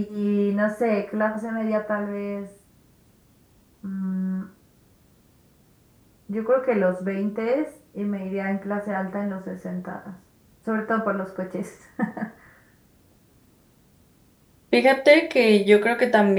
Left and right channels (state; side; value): identical; both; correlation 1.00